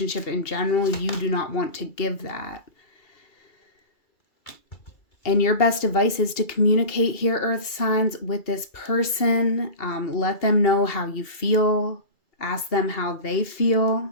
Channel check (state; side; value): late; right; 2.7 ms